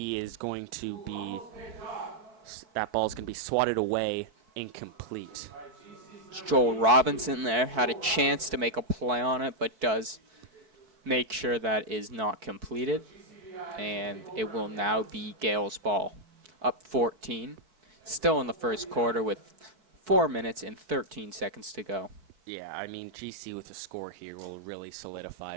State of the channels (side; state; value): left; late; 4.6 ms